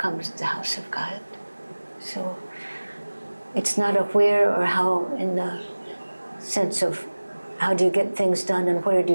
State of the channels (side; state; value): both; inverted; correlation -1.00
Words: the house of God. So it's not a where or how in the sense of how do you get things done and where do